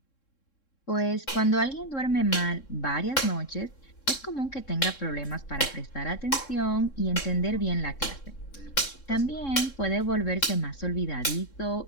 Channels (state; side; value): late; right; 3.7 ms